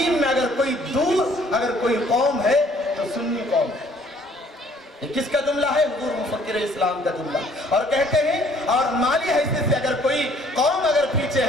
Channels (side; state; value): both; normal; correlation 0.59